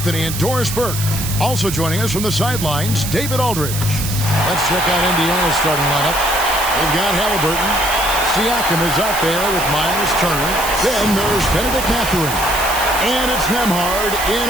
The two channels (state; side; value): noise; right; hiss, 6 dB below the sound